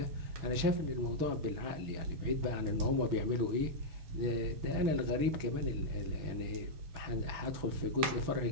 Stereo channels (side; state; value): left; late; 6.2 ms